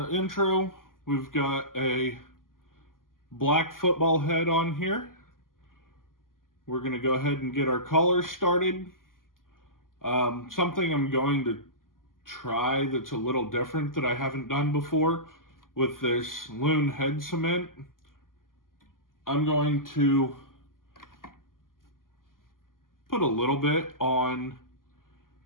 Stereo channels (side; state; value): right; late; 0.91 ms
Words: intro, we've got a black football head on here. We're going to go ahead and get our colors started. Something I'm going to try that's a little different that I haven't done before with this loon head cement. I'm going to put a little bit on